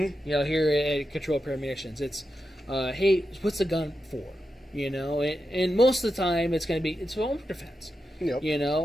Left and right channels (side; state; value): both; normal; correlation 0.89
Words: You know, here at Control Pair Munitions, it's, hey, what's the gun for? You know, and most of the time it's going to be, it's home defense. Yep. You